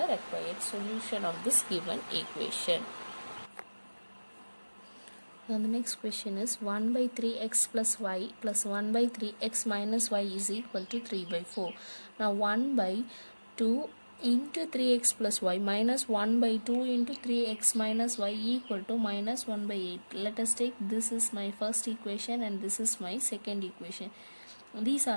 required solution of this given equation. Now the next question is 1 by 3x plus y plus 1 by 3x minus y is equal to 3 by 4. Now 1 by 2 into 3x plus y minus 1 by 2 into 3x minus y equal to minus 1 by 8. Let us take this is my first equation and this is my second equation. These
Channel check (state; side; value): inverted; both; correlation -1.00